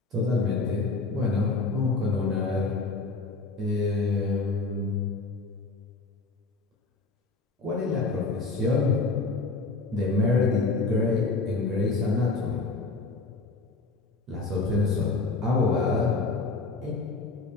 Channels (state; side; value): quieter; right; 3.7 dB